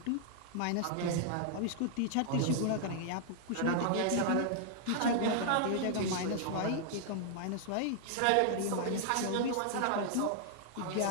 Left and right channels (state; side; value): different; both; correlation -0.01